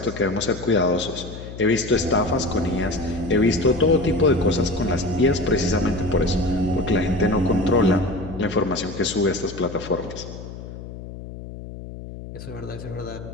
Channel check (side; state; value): left; noise; hum, 12 dB below the sound